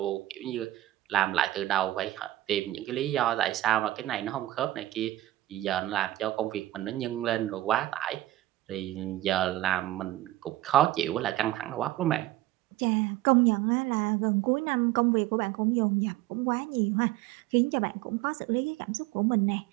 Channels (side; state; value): left; quieter; 15.4 dB